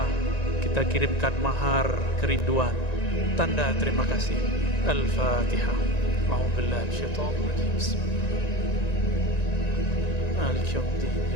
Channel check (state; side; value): late; right; 1.9 ms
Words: kita kirimkan mahar kerinduan, tanda terima kasih. Al-Fatihah. A'udzubillahi minasyaitonir rajim. Bismillahirrahmanirrahim. Maliki yaumiddin.